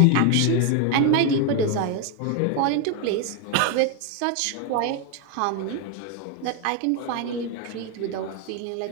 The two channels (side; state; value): both; different; correlation 0.01